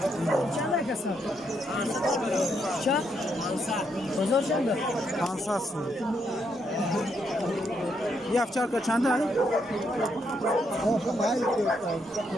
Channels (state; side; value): normal; both; correlation 0.77